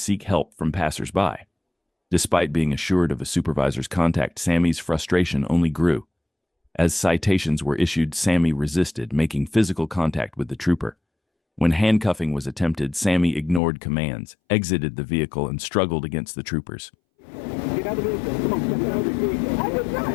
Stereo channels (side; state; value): right; drops out; at 13.6 s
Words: help from passersby. Despite being assured of a supervisor's contact, Sammy's frustration only grew. As citations were issued, Sammy resisted, making physical contact with the trooper. When handcuffing was attempted, Sammy ignored commands, exited the vehicle, and struggled against the troopers. Get out of the vehicle. Come on, step out of the vehicle. I did not